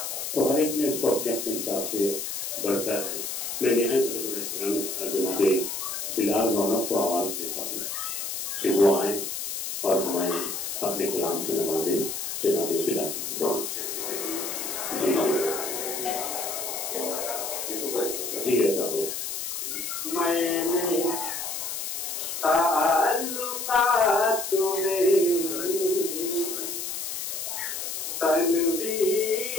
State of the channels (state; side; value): noise; left; hiss, 4 dB below the sound